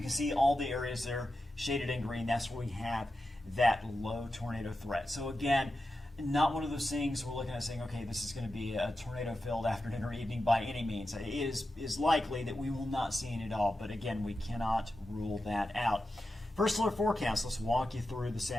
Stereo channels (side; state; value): both; normal; correlation 0.90